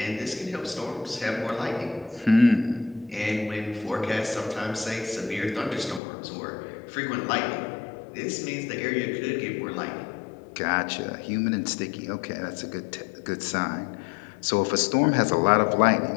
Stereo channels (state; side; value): drops out; right; at 6.0 s